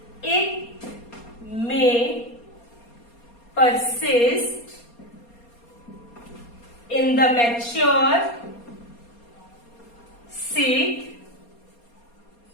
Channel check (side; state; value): right; late; 4.2 ms